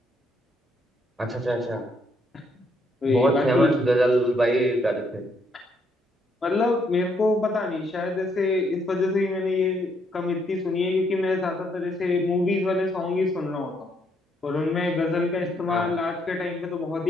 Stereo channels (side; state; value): both; normal; correlation 0.72